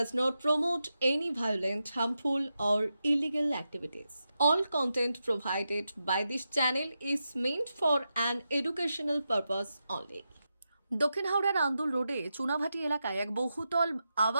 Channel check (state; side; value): inverted; both; correlation -0.88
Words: not promote any violent, harmful, or illegal activities. All content provided by this channel is meant for an educational purpose only. দক্ষিণ হাওড়ার আন্দুল রোডে চুনাভাটি এলাকায় এক বহুতল